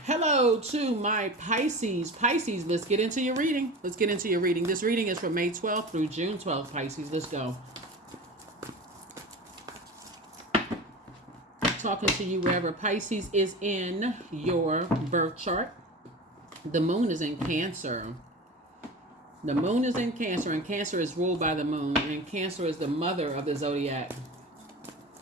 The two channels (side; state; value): both; normal; correlation 0.32